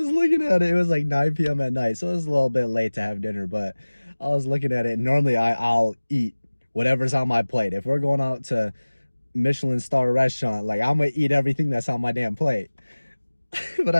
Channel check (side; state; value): both; inverted; correlation -1.00